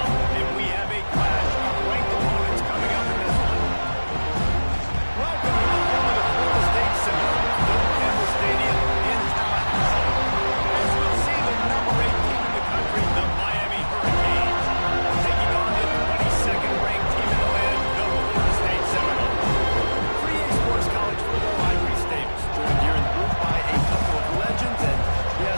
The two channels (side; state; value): both; inverted; correlation -1.00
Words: And we have a clash of ranked opponents coming up in this one. Welcome to the home of the Florida State Seminoles, Bill Campbell Stadium in Tallahassee. As we'll see, the number 8 team in the country, the Miami Hurricanes, taking on the 22nd ranked team in the land, the Florida State Seminoles. PreReq Sports College Football, I'm Reese Davis, joined here in the booth by a couple of legends, and yes,